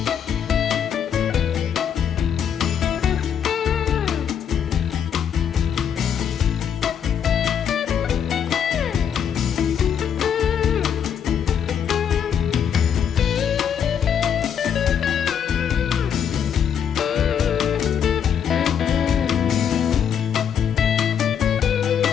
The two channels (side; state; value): right; quieter; 8.2 dB